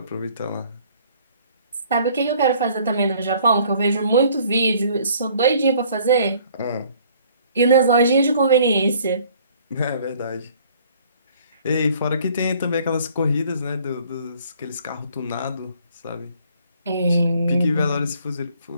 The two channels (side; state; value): both; inverted; correlation -0.58